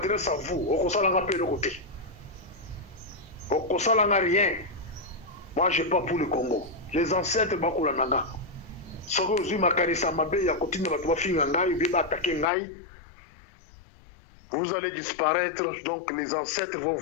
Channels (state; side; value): drops out; right; at 12.5 s